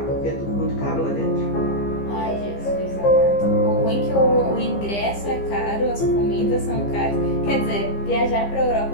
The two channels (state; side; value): late; right; 15 ms